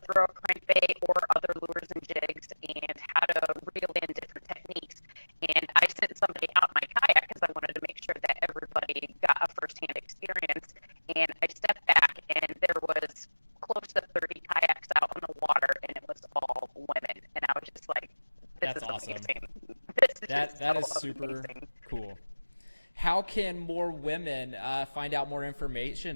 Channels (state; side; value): inverted; both; correlation -1.00